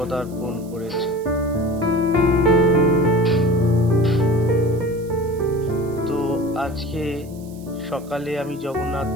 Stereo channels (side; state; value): right; noise; hiss, 24 dB below the sound